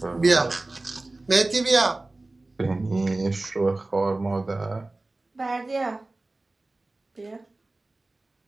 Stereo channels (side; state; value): left; quieter; 3.0 dB